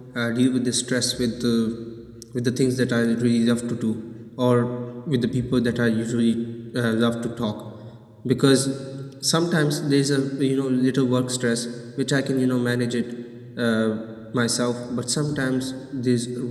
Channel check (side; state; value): both; identical; correlation 1.00